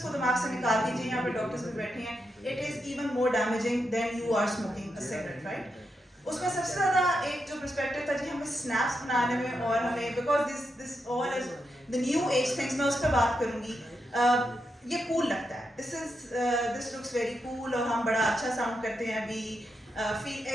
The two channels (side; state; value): both; normal; correlation 0.84